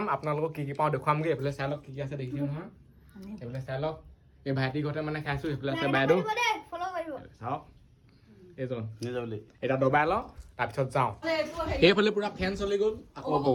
আপোনালোকক কি পাওঁ দেখুৱামগৈ। এইফালে চাই লওক কি আছে দেখিছে নহয়। এইফালে চাই লওক এই ভাইটি ঘৰতে মানে খাইছোঁ। সেইফালে আছে বাইদেউ চাওক এইজন এতিয়া দবাই লওঁ তাৰপিছত যাওঁ। এইফালে পুৰা ফেন চলি গ'ল আকৌ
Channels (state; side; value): identical; both; correlation 1.00